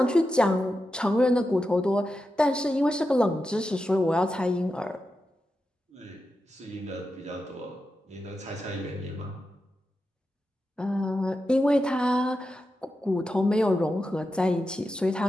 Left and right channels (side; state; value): both; normal; correlation 0.89